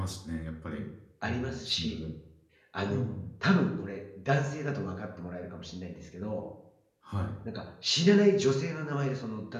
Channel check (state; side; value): identical; both; correlation 1.00